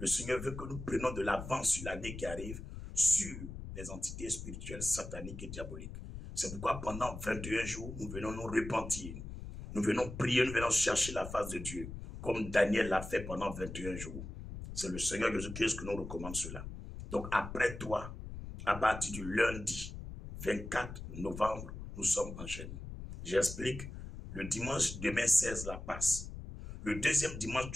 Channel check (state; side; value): noise; left; rumble, 9 dB below the sound